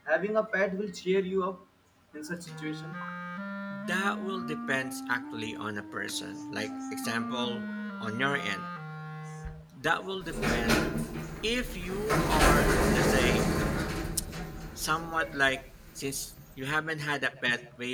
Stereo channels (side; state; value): both; identical; correlation 1.00